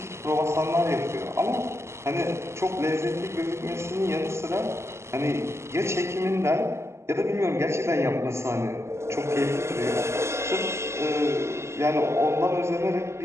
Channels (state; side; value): late; left; 0.13 ms